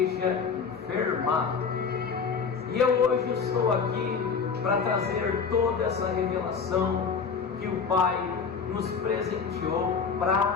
enferma. E eu hoje estou aqui para trazer toda essa revelação que o Pai nos presenteou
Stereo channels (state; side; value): quieter; right; 5.7 dB